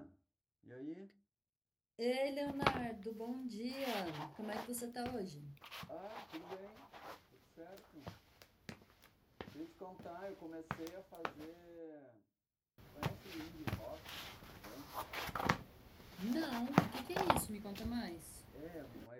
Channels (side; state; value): both; identical; correlation 1.00